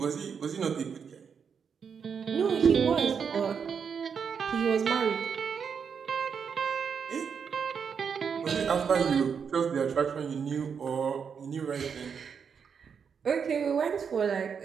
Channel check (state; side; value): quieter; left; 6.6 dB